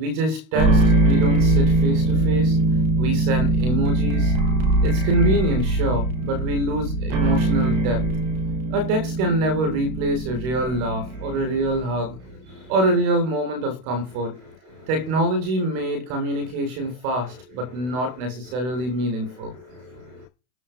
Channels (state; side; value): late; left; 32 ms